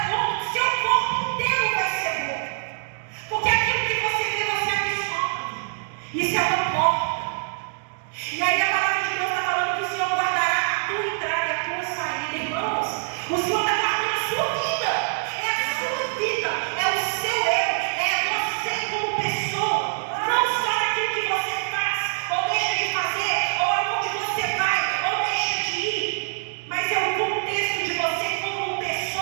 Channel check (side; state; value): left; silent; digital silence